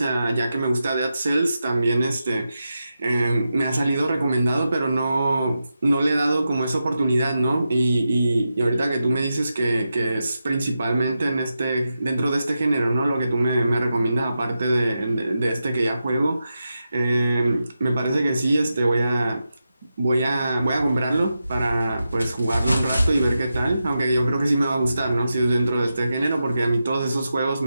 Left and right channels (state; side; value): inverted; both; correlation -0.89